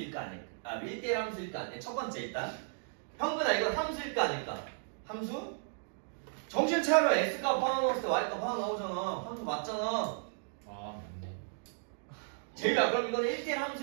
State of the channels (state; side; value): silent; left; digital silence